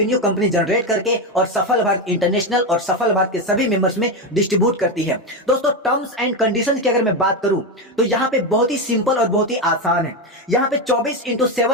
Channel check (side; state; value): both; normal; correlation 0.12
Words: कंपनी जनरेट करके और सफल भारत इंटरनेशनल और सफल भारत के सभी मेंबर्स में डिस्ट्रीब्यूट करती है। दोस्तों टर्म्स एंड कंडीशंस की अगर मैं बात करूं तो यहां पे बहुत ही सिंपल और बहुत ही आसान है। यहां पे